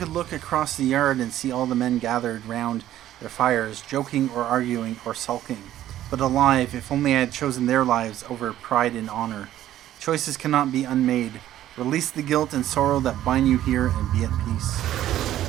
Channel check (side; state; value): left; quieter; 12.8 dB